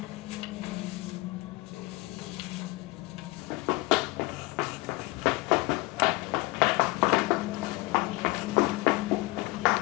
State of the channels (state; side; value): quieter; right; 22.3 dB